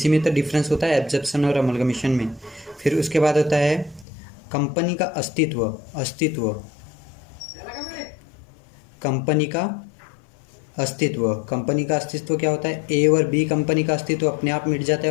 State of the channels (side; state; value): right; drops out; at 4.0 s